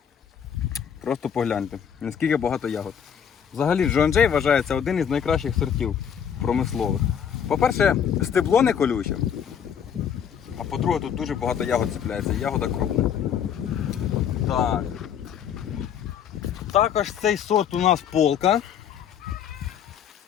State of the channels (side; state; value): right; quieter; 8.3 dB